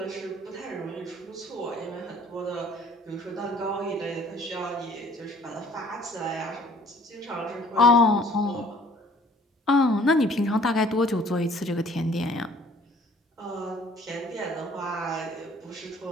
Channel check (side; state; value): both; normal; correlation 0.55